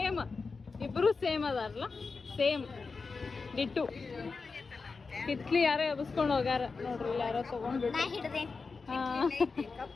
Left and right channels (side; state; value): right; quieter; 4.5 dB